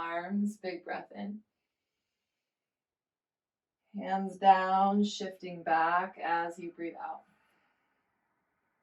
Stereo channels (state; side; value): identical; both; correlation 1.00